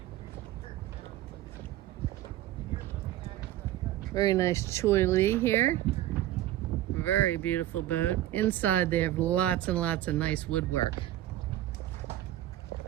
Very nice Choi Lee here. Very beautiful boat. Inside they have lots and lots of nice woodwork.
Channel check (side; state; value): left; quieter; 14.1 dB